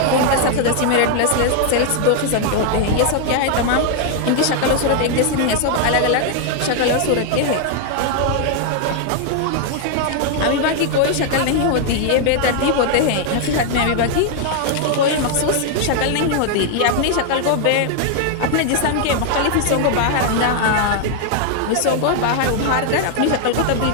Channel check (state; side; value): different; both; correlation 0.00